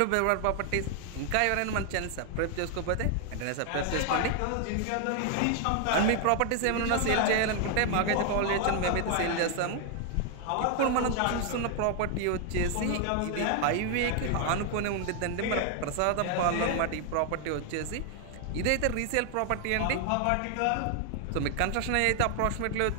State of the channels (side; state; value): both; different; correlation 0.00